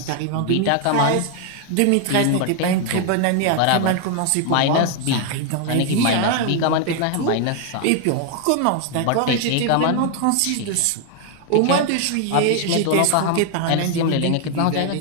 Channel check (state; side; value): different; both; correlation 0.00